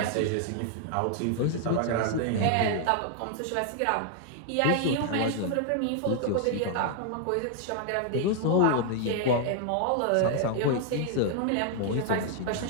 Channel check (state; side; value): different; both; correlation 0.00